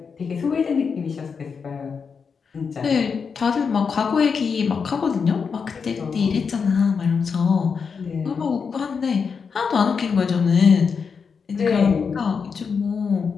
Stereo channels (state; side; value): quieter; right; 5.8 dB